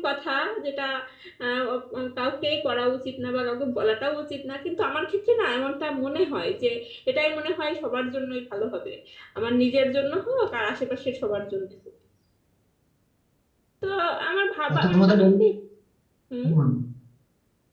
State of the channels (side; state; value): both; identical; correlation 1.00